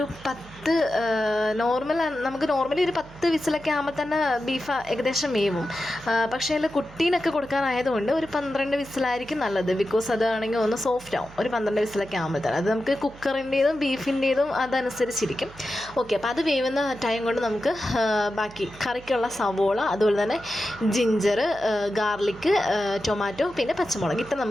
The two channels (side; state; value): right; noise; hum, 20 dB below the sound